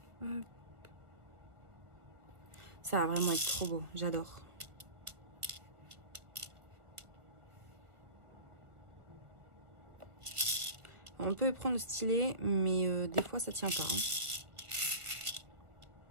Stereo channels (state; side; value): late; left; 1.6 ms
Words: Hop. Ça va vraiment être trop beau, j'adore. On peut prendre le stylet, mais des fois ça tient pas. Hein.